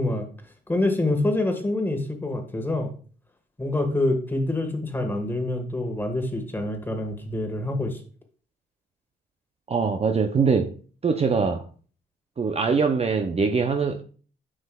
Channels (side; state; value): both; normal; correlation 0.69